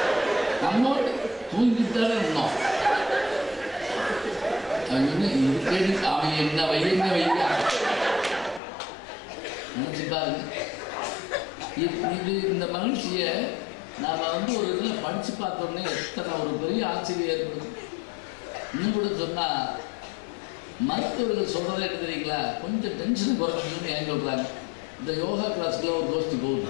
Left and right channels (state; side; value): drops out; right; at 8.6 s